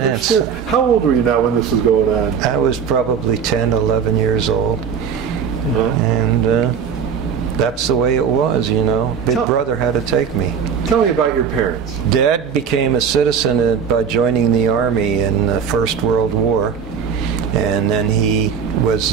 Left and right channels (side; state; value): left; quieter; 7.0 dB